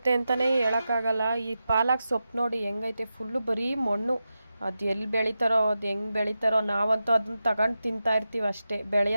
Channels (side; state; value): both; inverted; correlation -0.91